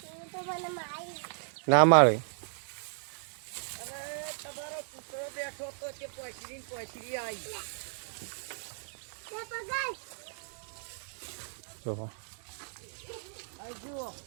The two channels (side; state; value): left; silent; digital silence